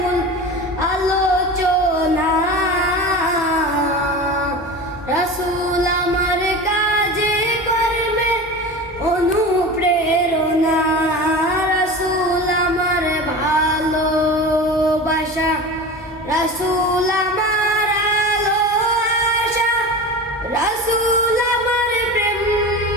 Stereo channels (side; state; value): both; normal; correlation 0.31